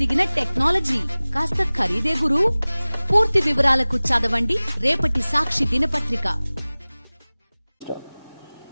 టెక్నాలజీ కాస్త ఖరీదే గురు. పూర్తి వివరాలకు చదవండి రేపటి సాక్షి దినపత్రిక.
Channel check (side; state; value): both; inverted; correlation -1.00